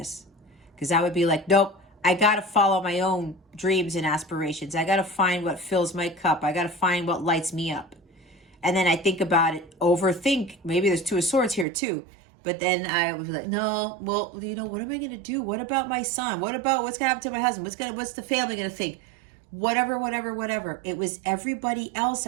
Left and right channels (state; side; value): drops out; left; at 11.7 s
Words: because I would be like, nope, I got to follow my own dreams and aspirations. I got to find what fills my cup. I got to find what lights me up. And then I think about it, overthink. Maybe there's Two of Swords here too. But then I would be like, no, well, you know, what am I going to do? What about my son? What about what's going to happen to my husband? What's the family going to think? Whatever. It was everybody else